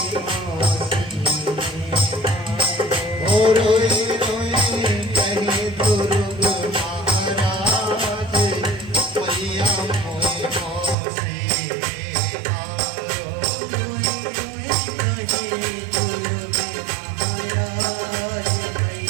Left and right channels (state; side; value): drops out; left; at 11.0 s